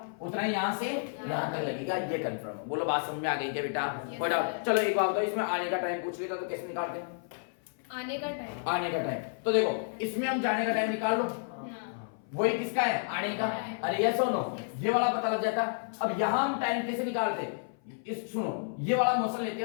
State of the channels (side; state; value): right; silent; 56 dB below the other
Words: उतना ही यहाँ से यहाँ तक लगेगा, ये कंफर्म। बोलो बात समझ में आ गई क्या बेटा, कोई डाउट। चलो एक बात बताओ, इसमें आने का टाइम पूछ लेता तो कैसे निकालते हैं आने का टाइम। आने का टाइम तो देखो इसमें हम जाने का टाइम निकाल लो, वही किसका है आने का। अरे यस और नो, ये वाला पता लग जाता। अब यहाँ हम टाइम कैसे निकालते, इस सुनो ये वाला मोशन लेते